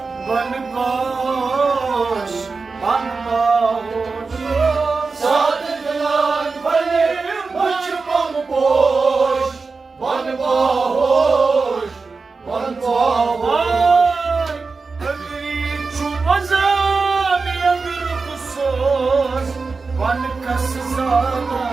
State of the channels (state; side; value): quieter; left; 4.3 dB